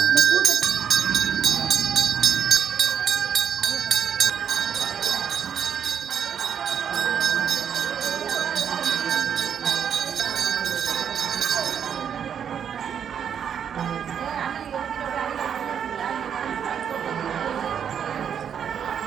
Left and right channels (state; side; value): quieter; left; 8.2 dB